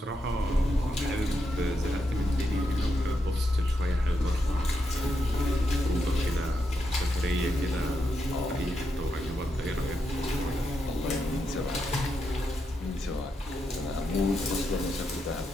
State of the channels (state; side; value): normal; both; correlation 0.84